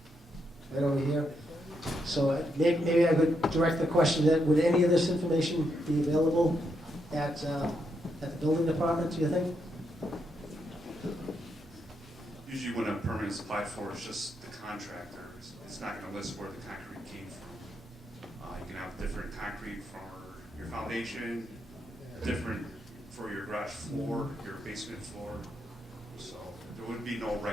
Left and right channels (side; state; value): both; normal; correlation 0.80